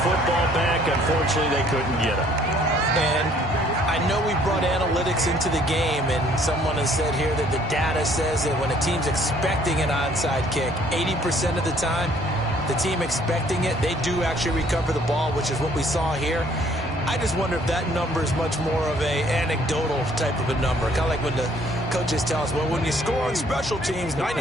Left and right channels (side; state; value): both; normal; correlation 0.61